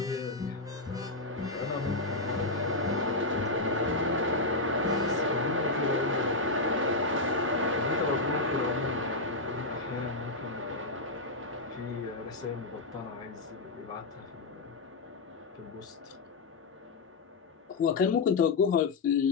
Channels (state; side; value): quieter; right; 3.2 dB